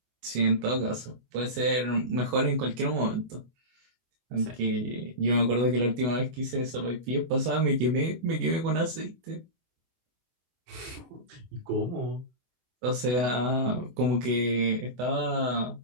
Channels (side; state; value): left; late; 24 ms